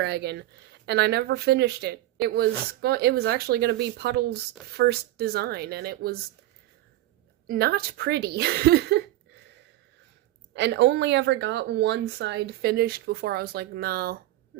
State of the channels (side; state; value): left; quieter; 15.5 dB